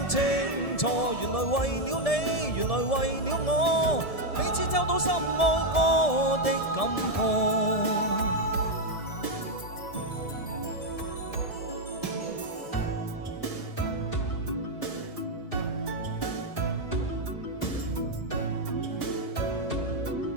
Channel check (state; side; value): late; right; 1.7 ms